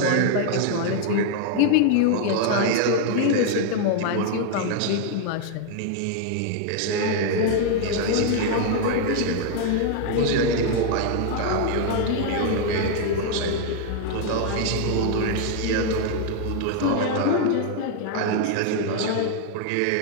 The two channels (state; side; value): different; both; correlation 0.00